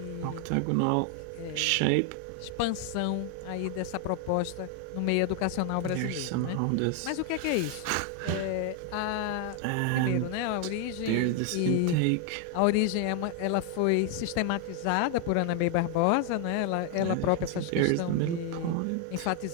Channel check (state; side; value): different; both; correlation 0.00